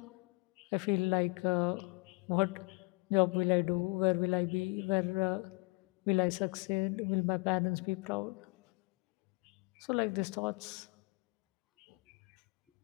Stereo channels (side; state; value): right; quieter; 28.7 dB